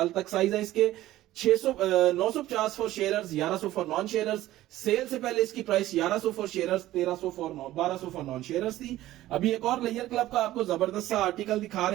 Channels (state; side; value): quieter; left; 15.2 dB